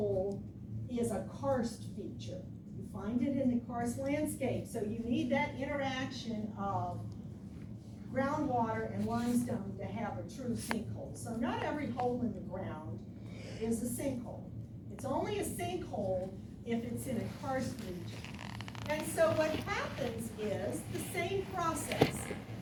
is a karst feature. You find it in the karst landscape, so you need that interaction of groundwater and limestone to have a true sinkhole. So not every hole in the ground is a sinkhole. It's only a sinkhole if it's in a karst region. And so what happens is the same process.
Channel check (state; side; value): identical; both; correlation 1.00